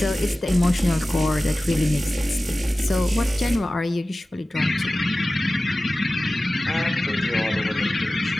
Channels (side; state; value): both; normal; correlation 0.96